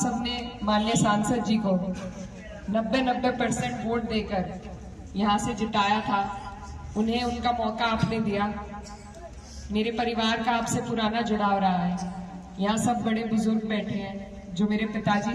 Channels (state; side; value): identical; both; correlation 1.00